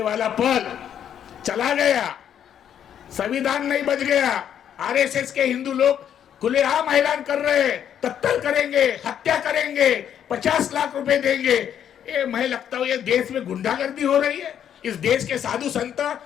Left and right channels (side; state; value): right; quieter; 9.4 dB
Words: वाला पल चला गया, संविधान नहीं बच गया। आरएसएस के हिंदू लोग खुलेआम ऐलान कर रहे हैं, कत्ल करेंगे, हत्या करेंगे, 50 लाख रुपए देंगे। ये मैं लगता हूं ये देश में गुंडागर्दी हो रही है, इस देश के साधु संत